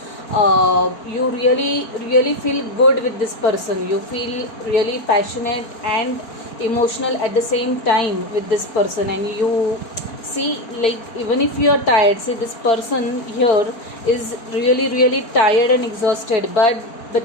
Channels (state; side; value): late; right; 4.4 ms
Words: you really feel good with this person, you feel really passionate and emotional at the same time with this person, and you see, like, even if you are tired, see, this person here is really tired and exhausted, but